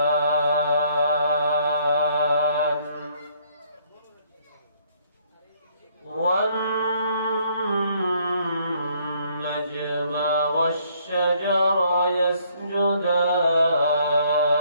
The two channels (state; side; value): inverted; both; correlation -0.65